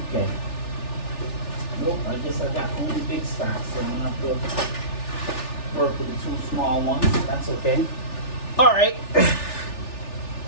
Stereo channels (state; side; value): late; right; 3.4 ms